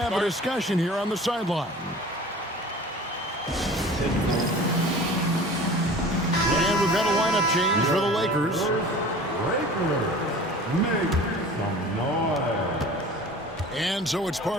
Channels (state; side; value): normal; both; correlation 0.41